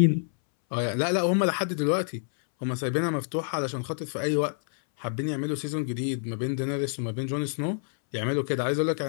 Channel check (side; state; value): right; silent; 60 dB below the other